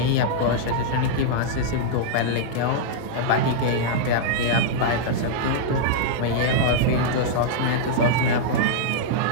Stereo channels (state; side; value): different; both; correlation -0.02